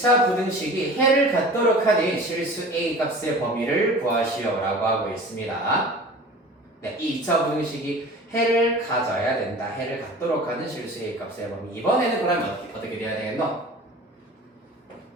부등식이 해를 갖도록 하는 실수 A 값의 범위를 구하시오라고 하고 있습니다. 네, 이 2차 부등식이 해를 가져야 된다. 해를 갖도록 하는 실수 A 값의 범위. 이번에는 그러면 어떻게 돼야 되겠노?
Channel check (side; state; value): both; normal; correlation 0.40